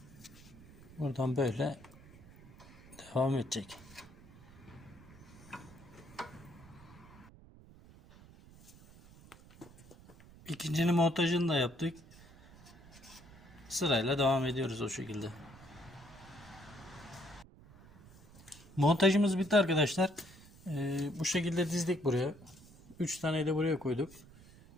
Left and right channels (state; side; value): noise; right; rumble, 21 dB below the sound